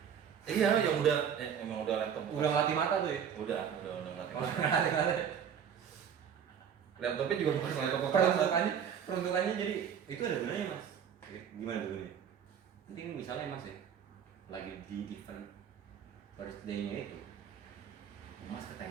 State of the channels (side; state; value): left; quieter; 8.1 dB